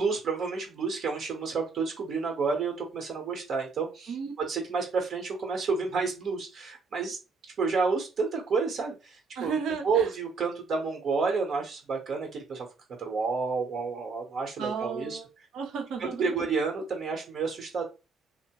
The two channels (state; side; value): quieter; left; 4.5 dB